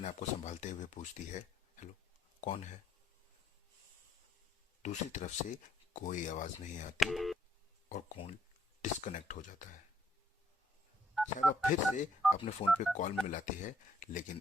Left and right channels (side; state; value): both; normal; correlation 0.70